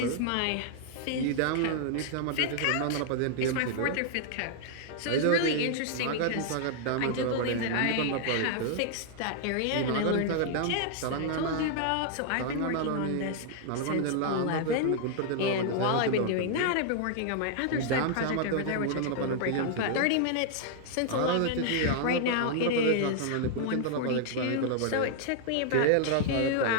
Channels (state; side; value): different; both; correlation 0.00